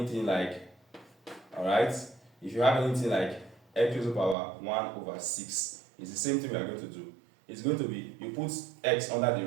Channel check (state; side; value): drops out; left; at 4.4 s